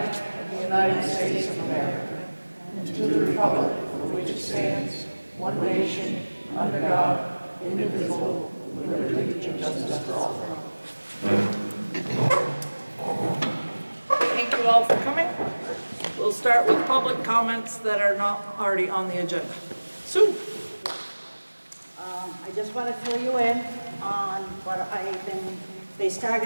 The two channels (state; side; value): inverted; both; correlation -1.00